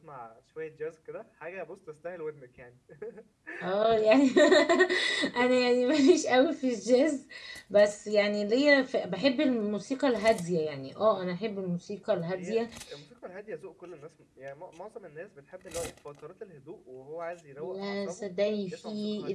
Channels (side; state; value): both; identical; correlation 1.00